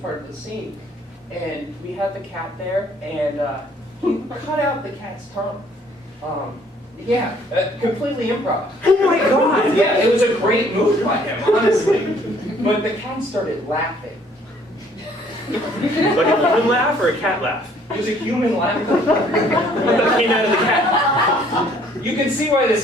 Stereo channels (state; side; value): normal; both; correlation 0.60